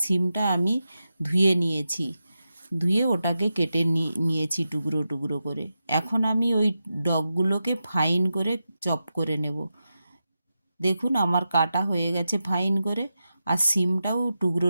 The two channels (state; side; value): inverted; both; correlation -0.90